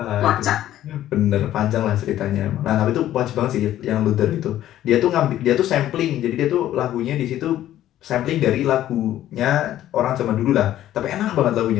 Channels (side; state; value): right; quieter; 12.8 dB